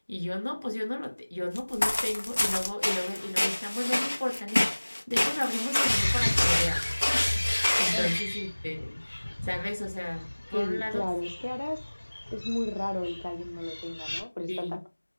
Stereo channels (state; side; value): inverted; both; correlation -1.00